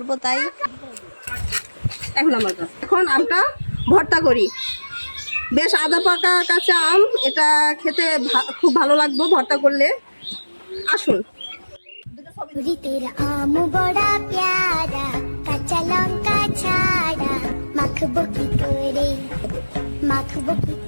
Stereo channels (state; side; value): inverted; both; correlation -1.00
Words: তাই। এখন আমটা ভর্তা করি। বেশ আদা পাকা কাঁচা আম, এটা খেতে খুব ভালো লাগবে ভর্তা করলে। আসুন। তেরা আম বড়া প্যারা, কাঁচা লঙ্কা ছাড়া, মাখবো কি করে